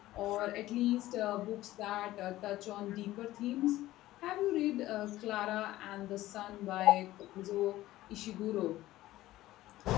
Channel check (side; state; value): right; quieter; 15.9 dB